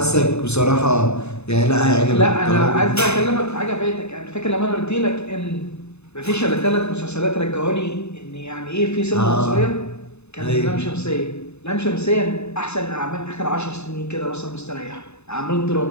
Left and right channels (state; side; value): late; right; 0.81 ms